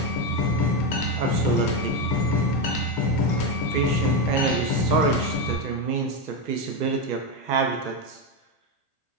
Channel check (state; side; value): late; right; 1.3 ms